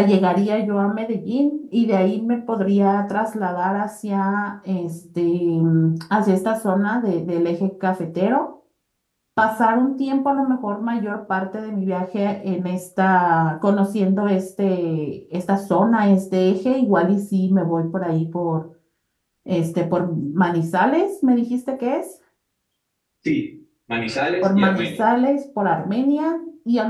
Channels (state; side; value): identical; both; correlation 1.00